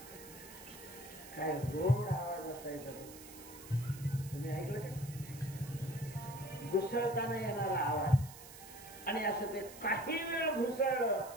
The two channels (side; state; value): right; noise; hiss, 16 dB below the sound